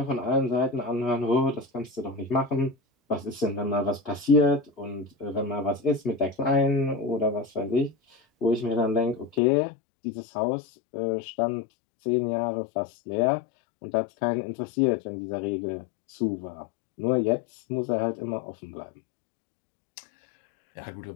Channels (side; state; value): right; drops out; at 9.4 s